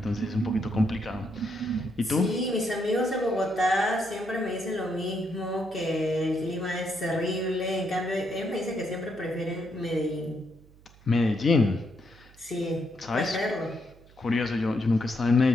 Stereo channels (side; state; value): right; noise; hum, 25 dB below the sound